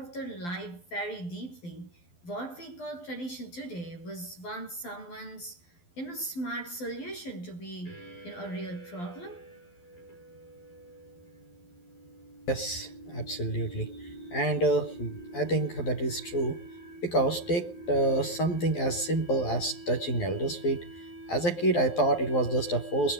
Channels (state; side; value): late; right; 12 ms